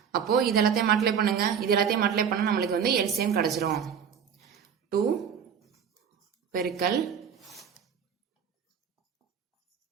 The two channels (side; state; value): left; quieter; 7.5 dB